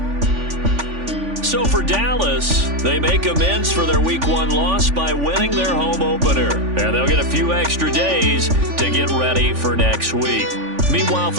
So for Dallas, they make amends for their Week 1 loss by winning their home opener. And they'll get a few extra days to get ready for next week. Meanwhile,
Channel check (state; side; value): late; left; 3.5 ms